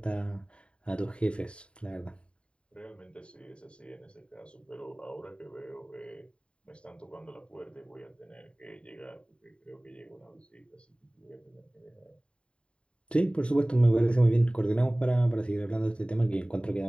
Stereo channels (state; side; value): late; right; 0.056 ms